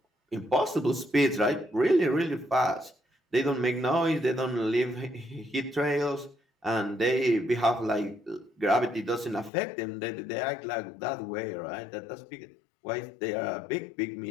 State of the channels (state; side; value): drops out; right; at 9.5 s